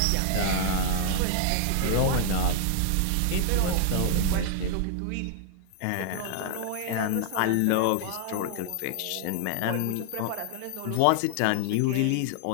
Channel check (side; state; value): both; different; correlation 0.00